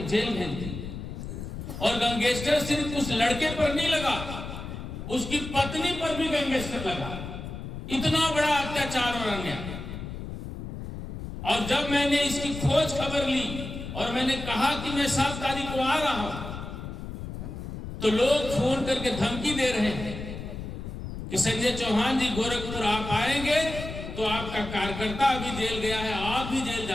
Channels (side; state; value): left; noise; rumble, 8 dB below the sound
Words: जेल भेजती है। और गैंगस्टर सिर्फ उस लड़के पर नहीं लगा, उसकी पत्नी पर भी गैंगस्टर लगा। इतना बड़ा अत्याचार और अन्याय। और जब मैंने इसकी खोज खबर ली और मैंने कहा कि मैं 7 तारीख को आ रहा हूं तो लोग फोन करके धमकी दे रहे हैं कि संजय चौहान जी गोरखपुर आप आएंगे तो आपका कार्यकर्ता अभी जेल गया है, आप भी जेल